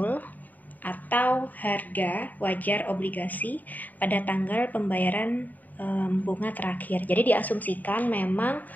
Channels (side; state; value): right; late; 0.082 ms